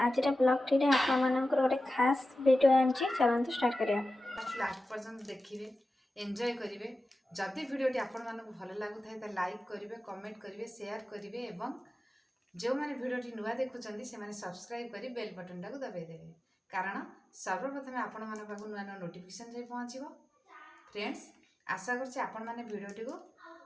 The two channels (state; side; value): normal; both; correlation 0.94